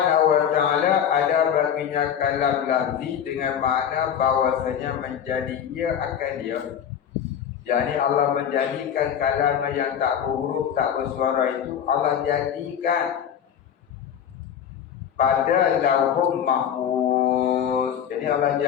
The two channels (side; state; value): right; quieter; 8.8 dB